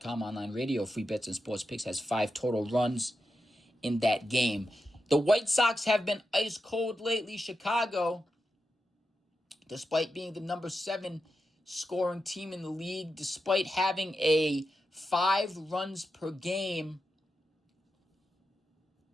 online radio, free bets and sports picks, has 5 total runs in that game. The White Sox have been ice cold lately. Chicago, despite being the number 7 scoring team in the league, despite having a 5 runs per game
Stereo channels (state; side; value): normal; both; correlation 0.88